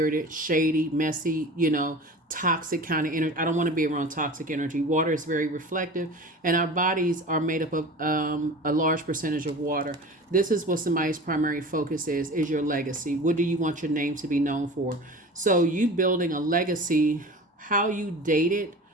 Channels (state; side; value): normal; both; correlation 0.37